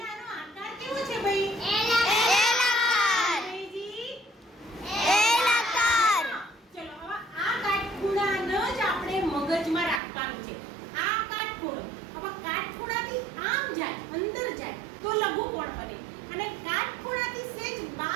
આનો આકાર કેવો છે ભાઈ? મગજમાં રાખવાનું છે આ કાટખૂણો. હવે કાટખૂણાથી આમ જાય, અંદર જાય તો લઘુકોણ બને અને કાટખૂણાથી સેજ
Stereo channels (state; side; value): drops out; left; at 10.0 s